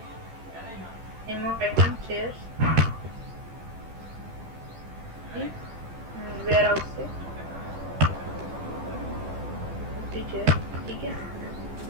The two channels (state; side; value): late; left; 13 ms